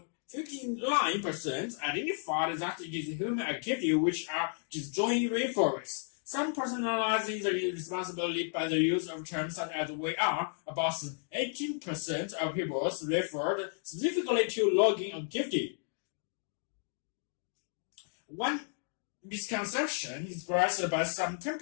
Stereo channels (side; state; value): right; silent; 56 dB below the other